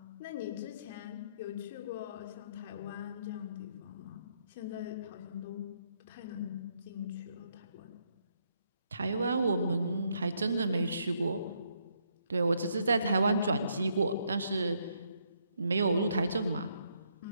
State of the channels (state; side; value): inverted; both; correlation -0.74